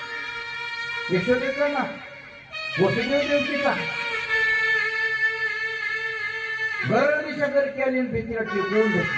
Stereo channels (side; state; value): both; identical; correlation 1.00